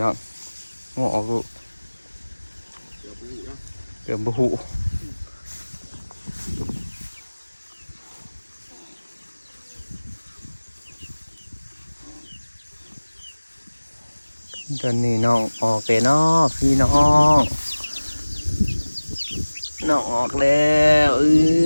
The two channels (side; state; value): both; inverted; correlation -1.00